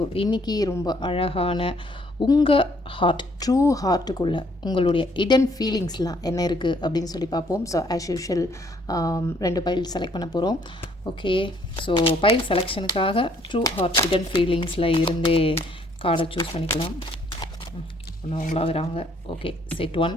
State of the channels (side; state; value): both; normal; correlation 0.65